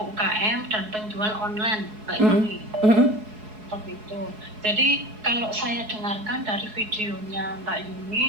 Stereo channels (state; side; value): late; left; 4.7 ms